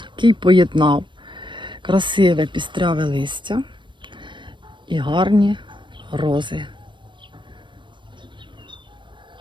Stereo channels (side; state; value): left; late; 0.23 ms